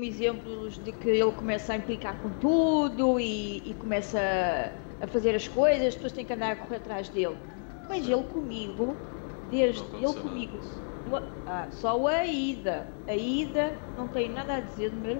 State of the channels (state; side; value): silent; right; 58 dB below the other